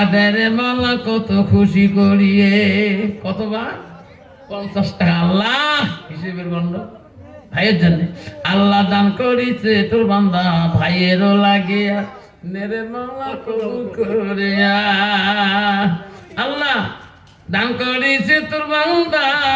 দেরে মালা কত খুশি করিয়ে কতবার 50 টাকা আল্লাহ হিসেবের গণ্ড ভাইয়ের জন্য আল্লাহ দান করিছে তোর বান্দা ভাইয়েরও লাগিয়া নেরে মালা কবুল করিয়া আল্লাহ দান করিছে তোর বান্দা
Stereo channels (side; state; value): both; identical; correlation 1.00